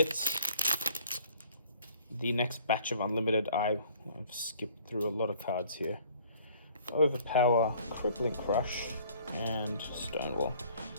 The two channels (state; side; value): inverted; both; correlation -0.55